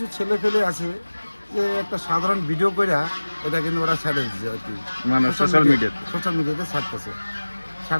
ছেলে ফেলে আছে যে একটা সাধারণ ভিডিও করে এটা কিন্তু ওরা ছেড়ে দিচ্ছে আর কি, মানে সোশ্যাল মিডিয়াতে ছাড়তেছে।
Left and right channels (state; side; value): inverted; both; correlation -1.00